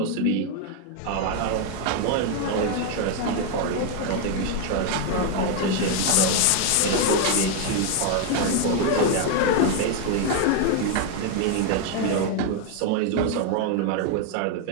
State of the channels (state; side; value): different; both; correlation 0.01